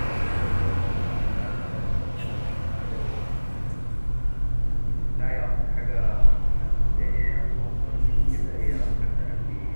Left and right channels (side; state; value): both; inverted; correlation -1.00